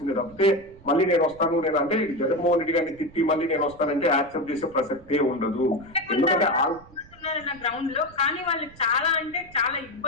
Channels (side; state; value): right; noise; rumble, 23 dB below the sound